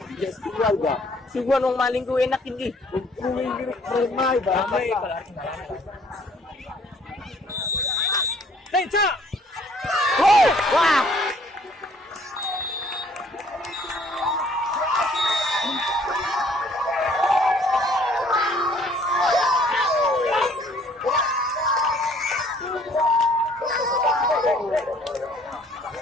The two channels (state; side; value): normal; both; correlation 0.59